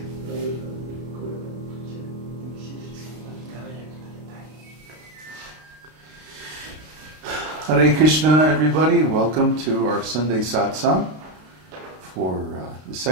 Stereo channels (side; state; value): left; late; 32 ms